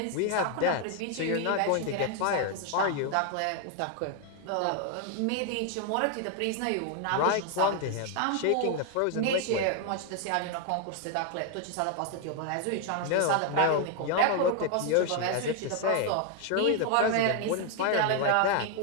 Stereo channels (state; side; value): different; both; correlation 0.01